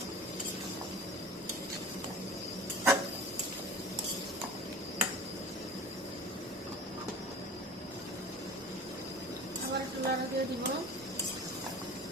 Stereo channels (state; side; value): normal; both; correlation 0.38